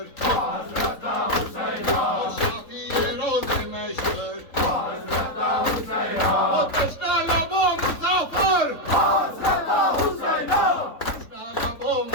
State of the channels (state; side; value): late; right; 3.9 ms